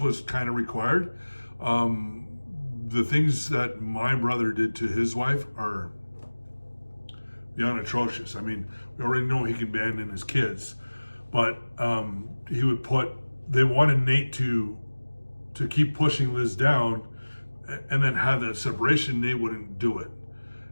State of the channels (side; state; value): both; inverted; correlation -1.00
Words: what's kind of required. The things that my brother did to his wife are beyond atrocious. I mean, we already know he can abandon his kids, but they wanted Nate to keep pushing Liz down and then have that separation. Nate wouldn't do it.